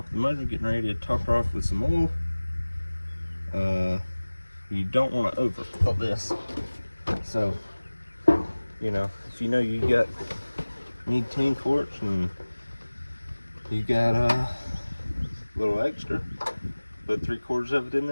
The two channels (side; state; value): both; inverted; correlation -1.00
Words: of the motor, getting ready to top her off with some oil. You don't want to overfill this. So, you know, if you know you need 10 quarts and you got a little extra, put 3/4 of it in